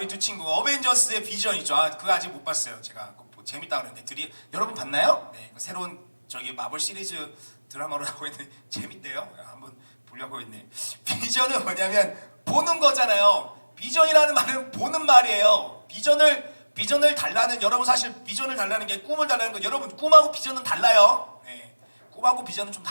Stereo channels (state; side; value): inverted; both; correlation -1.00